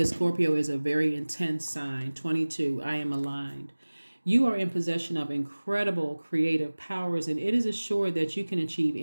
Scorpio is a very intense sign. 22, I am aligned. You are in possession of incredible creative powers, and it is assured that you can achieve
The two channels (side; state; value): both; inverted; correlation -1.00